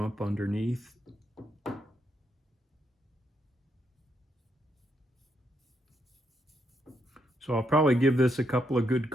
underneath. So I'll probably give this a couple of good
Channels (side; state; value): both; normal; correlation 0.78